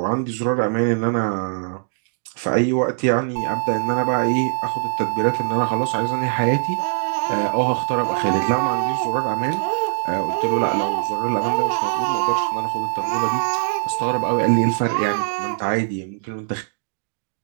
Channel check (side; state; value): left; silent; digital silence